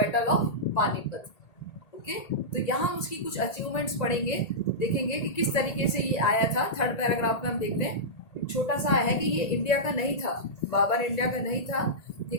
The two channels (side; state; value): right; late; 1.8 ms